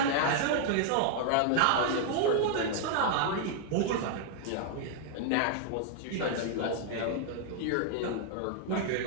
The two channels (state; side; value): different; both; correlation 0.00